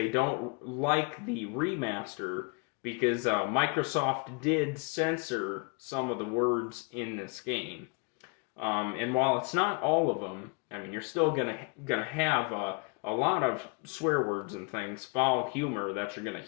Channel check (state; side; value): quieter; right; 32.8 dB